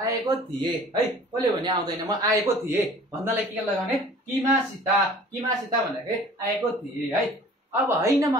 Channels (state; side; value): normal; both; correlation 0.48